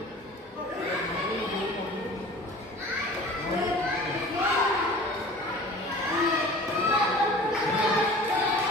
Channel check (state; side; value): normal; both; correlation 0.43